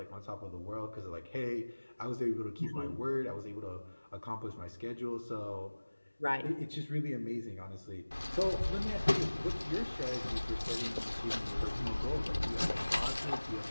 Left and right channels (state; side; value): inverted; both; correlation -1.00